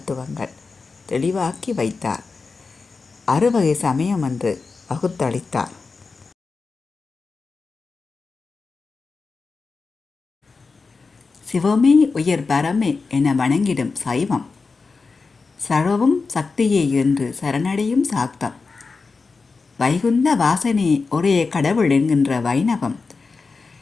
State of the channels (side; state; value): right; quieter; 4.4 dB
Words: தெளிவாக்கி வைத்தார். 6 வகை சமயம் என்று வகுத்தளித்தார். சிவமே உயர் பரமே என வணங்கிடும் சைவம், சர்வமும் சக்தியே என்று சரணடையும் சாக்தம், வைகுந்த வாசனே ஒரே கடவுள் என்கின்ற வைணவம்,